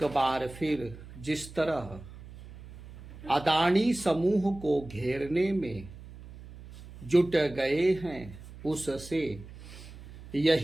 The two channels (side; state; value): right; noise; hum, 16 dB below the sound